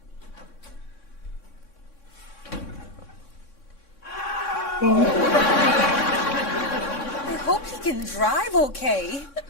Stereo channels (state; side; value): late; right; 3.6 ms